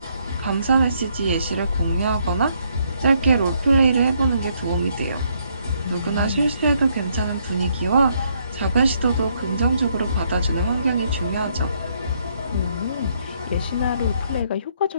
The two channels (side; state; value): both; inverted; correlation -0.71